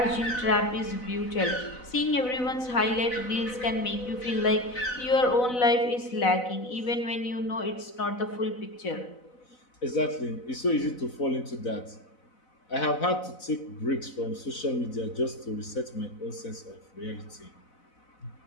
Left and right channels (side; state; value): right; late; 4.0 ms